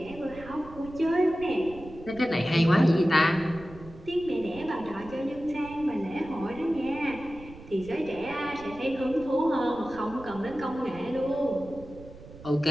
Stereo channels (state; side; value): noise; right; rumble, 18 dB below the sound